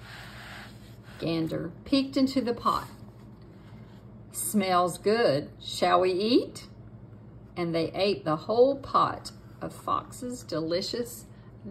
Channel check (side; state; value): both; identical; correlation 1.00